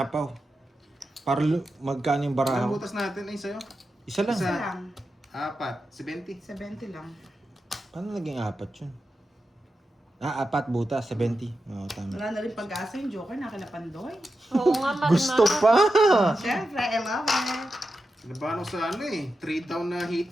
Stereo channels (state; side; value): normal; both; correlation 0.90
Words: Para magkano yung Ang barahaw. butas natin ay sa'yo. Isa lang. Isa Isa. lang. 4. 70. 70 lang. Paano naging apat yun? 4 butas. 70. Oo, tama. Wala na rin pag-asa yung joker na kila Pandoy. Oo nga, Marma. Gusto pa! Siyempre, I love it. Nabahan ko sa 3 down na